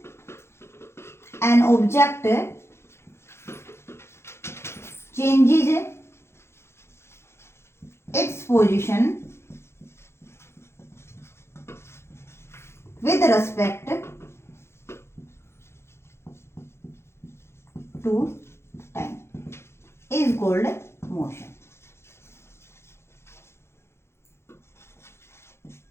an object changes its position with respect to time is called motion.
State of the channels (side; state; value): right; late; 0.12 ms